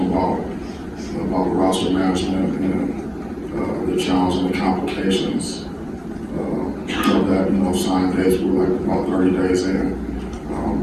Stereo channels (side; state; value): both; identical; correlation 1.00